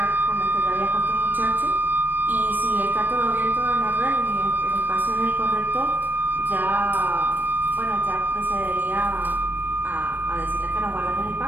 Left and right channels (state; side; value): late; left; 0.091 ms